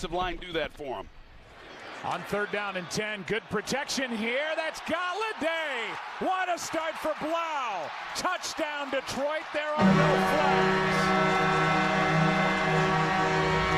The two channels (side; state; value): both; identical; correlation 1.00